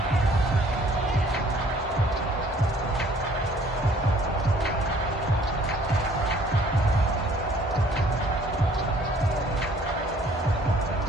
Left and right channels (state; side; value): normal; both; correlation 0.57